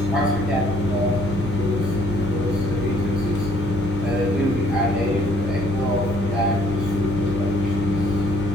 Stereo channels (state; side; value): normal; both; correlation 0.63